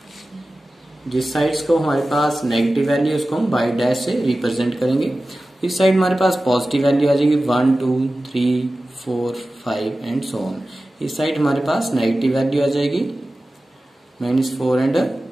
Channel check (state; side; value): normal; both; correlation 0.95